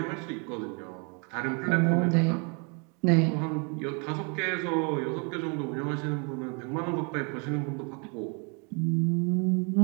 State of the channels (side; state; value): left; quieter; 35.6 dB